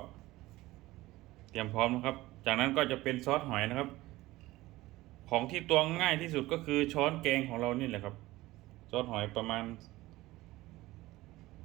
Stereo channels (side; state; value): left; quieter; 18.2 dB